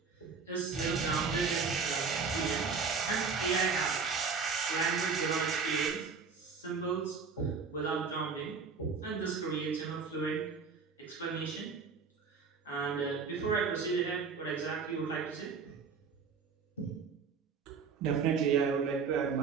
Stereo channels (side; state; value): left; quieter; 5.4 dB